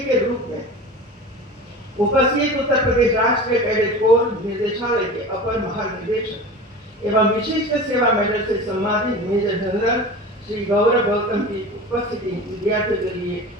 के रूप में उपस्थित उत्तर प्रदेश राष्ट्रीय कैडेट कोर निर्देशालय के अपर महानिदेशक एवं विशिष्ट सेवा मेडल से सम्मानित मेजर जनरल श्री गौरव गौतम की उपस्थिति विद्यार्थियों के लिए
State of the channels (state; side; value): normal; both; correlation 0.34